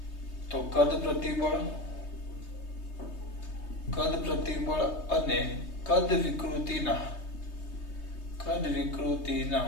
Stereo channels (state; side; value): late; right; 3.2 ms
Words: તો કદ પ્રતિબળ અને કદ વિકૃતિના